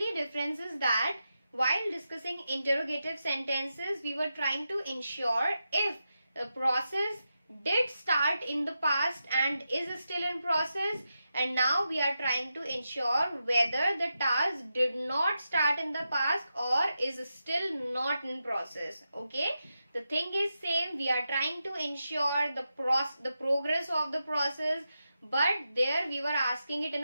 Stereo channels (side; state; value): both; inverted; correlation -0.88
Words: difference is that while discussing interrogative sentences, we were trying to ensure if the process did start in the past and is still in process, and now we are trying to ensure whether the task did not start in the past or is still not in process. Okay, the thing is same. We are trying to ensure the progress of the process, but there we were asking it in